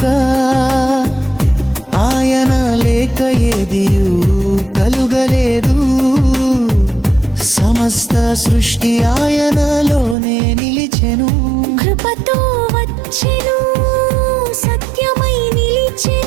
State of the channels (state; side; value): drops out; left; at 10.2 s